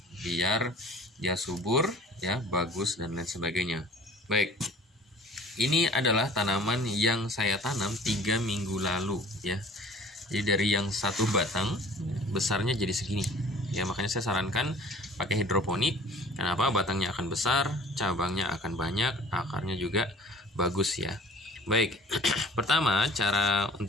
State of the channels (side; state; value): both; normal; correlation 0.48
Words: biar dia subur, ya, bagus dan lain sebagainya. Baik, ini adalah tanaman yang saya tanam 3 minggu lalu, ya. Jadi dari yang satu batang besarnya jadi segini, ya. Makanya saya sarankan pakai hidroponik. Kenapa? Batangnya akan besar, cabangnya akan banyak, akarnya juga bagus, ya. Baik, pertama cara